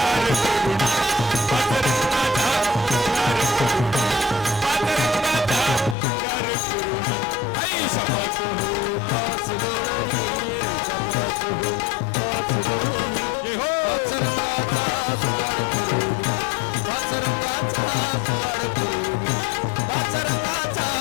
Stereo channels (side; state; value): right; drops out; at 6.0 s